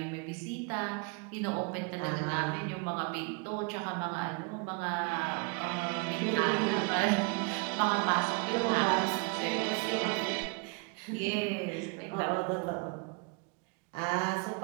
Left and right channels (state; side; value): quieter; left; 32.0 dB